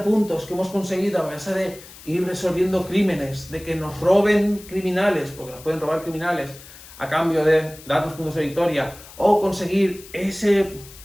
puntos que hemos conseguido a base de ir resolviendo crímenes, de que nos roben criminales, porque nos pueden robar criminales a cambio de darnos puntos de victoria, o conseguir ese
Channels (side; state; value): left; noise; hiss, 19 dB below the sound